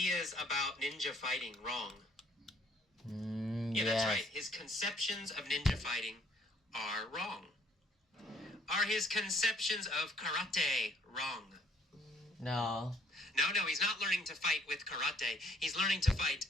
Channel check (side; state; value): both; normal; correlation 0.64